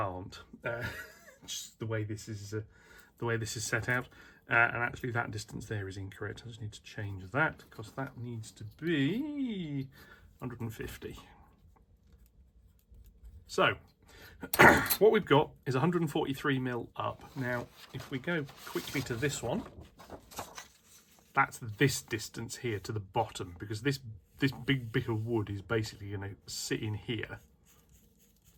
Just the way this is set out, and actually that distance there is incorrect. I just need to change that because that needs to be 150. So what we've got is 143mm up. Now if we go quickly to this one, that's this distance here to the bottom, because this big bit of wood is basically going to sit in here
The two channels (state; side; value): identical; both; correlation 1.00